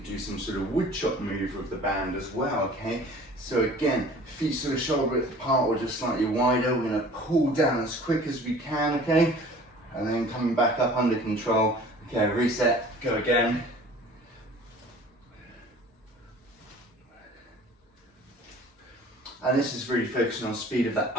do some sort of wood chop move with the band as well, okay? So again, feet sort of shoulder width apart or just slightly wider. We're gonna pull down as quick as we can, okay? And then coming back up under control. Okay, reset, go again. And this is really focusing on speed of that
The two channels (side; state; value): both; normal; correlation 0.47